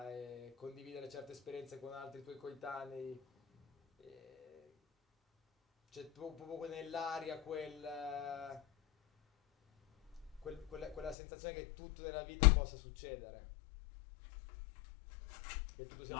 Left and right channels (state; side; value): drops out; right; at 11.2 s